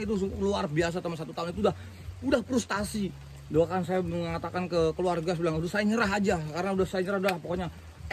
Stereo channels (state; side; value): identical; both; correlation 1.00